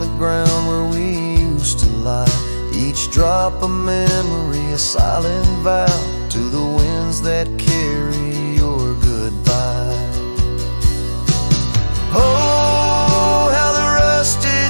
ground where we used to lie. Each drop a memory, a silent vow to the winds that carry your goodbye. Oh, how the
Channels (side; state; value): both; inverted; correlation -1.00